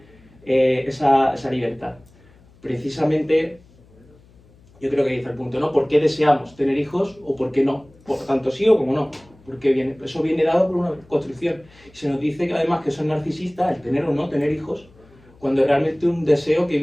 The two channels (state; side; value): noise; left; hum, 28 dB below the sound